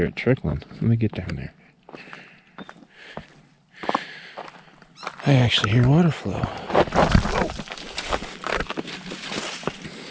it trickling. Let me get down there. I actually hear water flow. Oh.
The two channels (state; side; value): identical; both; correlation 1.00